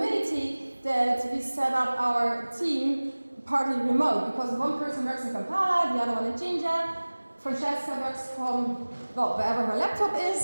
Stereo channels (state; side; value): inverted; both; correlation -1.00